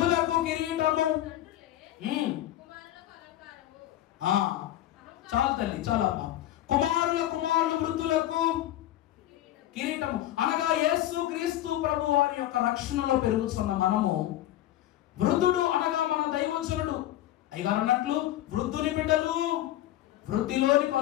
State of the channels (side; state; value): right; quieter; 13.6 dB